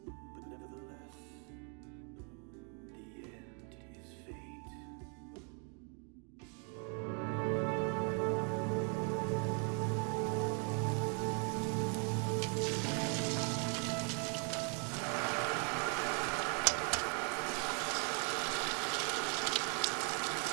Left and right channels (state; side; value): quieter; left; 38.5 dB